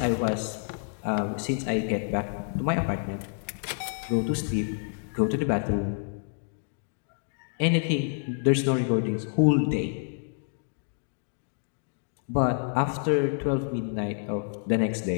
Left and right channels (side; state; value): right; silent; digital silence